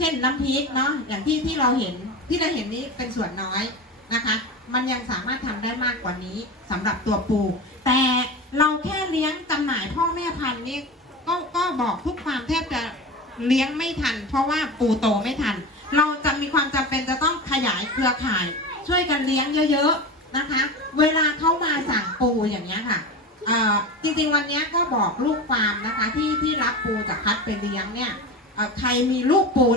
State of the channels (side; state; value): both; normal; correlation 0.27